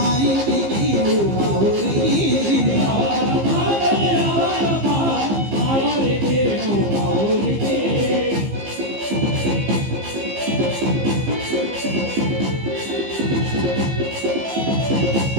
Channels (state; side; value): late; left; 15 ms